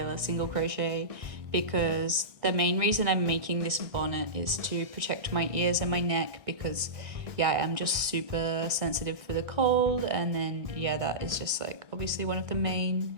single crochet, because the main reason I'm making this bonnet is to protect my ears and my neck, because yeah, I'm just super sensitive for the cold, and then yeah, that is just like obviously one of the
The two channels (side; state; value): left; late; 1.6 ms